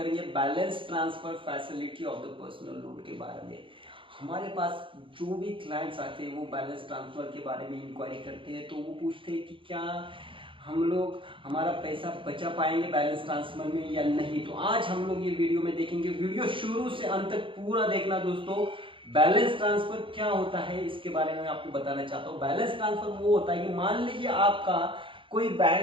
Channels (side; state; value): left; late; 0.25 ms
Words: balance transfer facility of the personal loan के बारे में। हमारे पास जो भी क्लाइंट्स आते हैं वो बैलेंस ट्रांसफर के बारे में इंक्वायरी करते हैं, तो वो पूछते हैं कि क्या हम लोग हमारा पैसा बचा पाएंगे बैलेंस ट्रांसफर में या नहीं। तो आज हम लोग ये वीडियो में देखेंगे। वीडियो शुरू से अंत तक पूरा देखना दोस्तों। बैलेंस ट्रांसफर क्या होता है इसके बारे में आपको बताना चाहता हूँ। बैलेंस ट्रांसफर वो होता है कि मान लीजिए आपका कोई